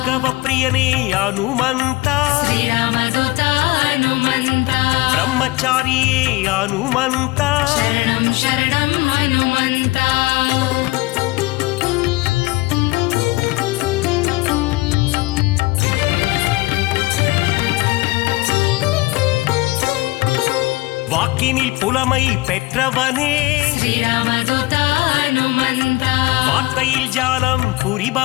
ಪ್ರಿಯನೇ ಹನುಮಂತ ಶ್ರೀರಾಮದೂತ ಹನುಮಂತ ಬ್ರಹ್ಮಚಾರಿಯೇ ಹನುಮಂತ ಶರಣಂ ಶರಣಂ ಹನುಮಂತ வாக்கினில் புலமை பெற்றவனே ಶ್ರೀರಾಮದೂತ ಹನುಮಂತ வார்த்தையில் ஜாலம்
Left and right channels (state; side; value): quieter; right; 21.3 dB